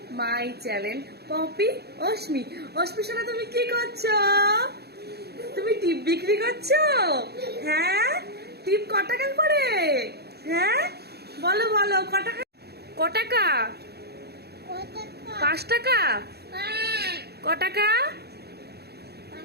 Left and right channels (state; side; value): late; left; 0.47 ms